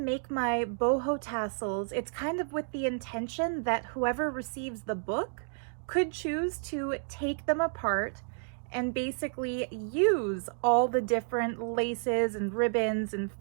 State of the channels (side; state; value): left; silent; 57 dB below the other